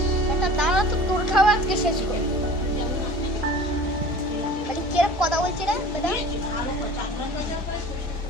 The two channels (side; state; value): both; normal; correlation 0.42